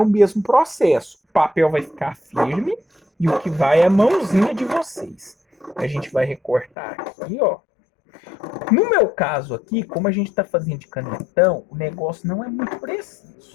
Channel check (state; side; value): drops out; right; at 6.7 s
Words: o mesmo processo. O papel vai ficar firme e o que vai é a mãozinha de vocês. A gente vai recortar aqui, ó. No meu caso aqui, como a gente está fazendo de canetão, o negócio não é muito